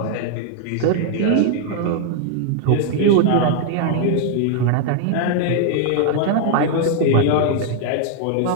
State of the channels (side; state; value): both; different; correlation 0.00